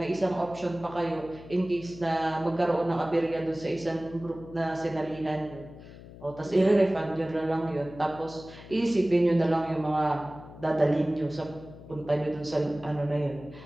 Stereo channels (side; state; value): left; noise; hum, 17 dB below the sound